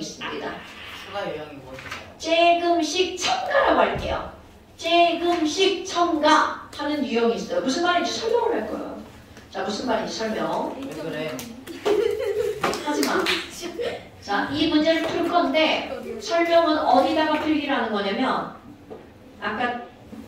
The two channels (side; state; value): both; identical; correlation 1.00